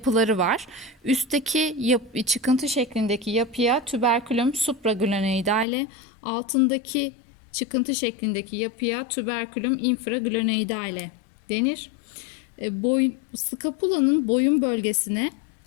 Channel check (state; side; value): drops out; right; at 5.7 s